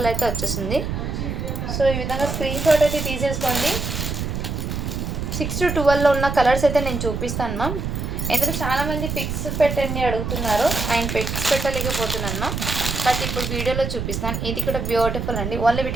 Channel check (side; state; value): right; noise; rumble, 3 dB below the sound